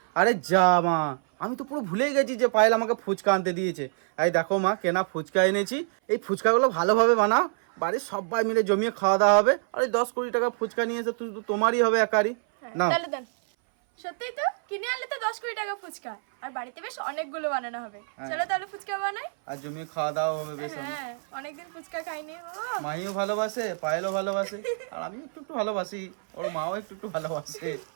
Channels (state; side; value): silent; left; 59 dB below the other